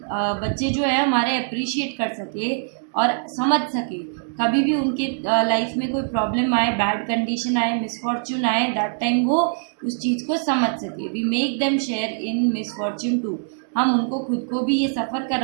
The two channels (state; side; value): silent; left; digital silence